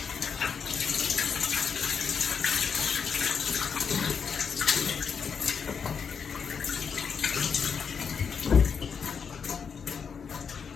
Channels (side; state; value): right; quieter; 6.4 dB